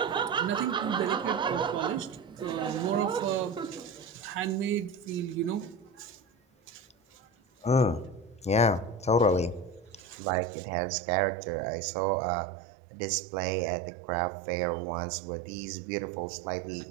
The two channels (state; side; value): drops out; left; at 10.2 s